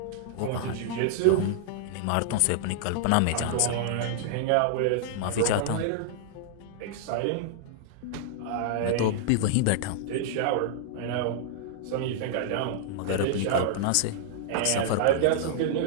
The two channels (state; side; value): different; both; correlation -0.01